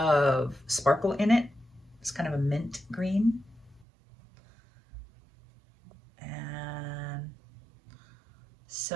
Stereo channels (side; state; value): left; drops out; at 3.9 s